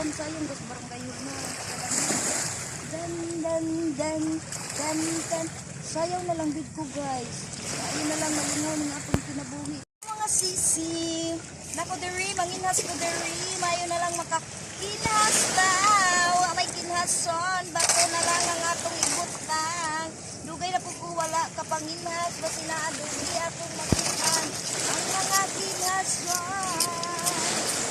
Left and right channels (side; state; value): both; identical; correlation 1.00